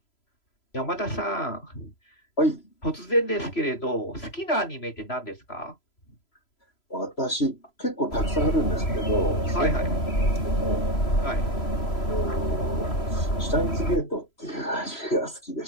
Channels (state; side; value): late; right; 3.0 ms